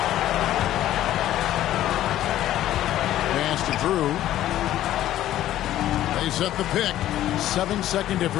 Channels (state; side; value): quieter; right; 13.2 dB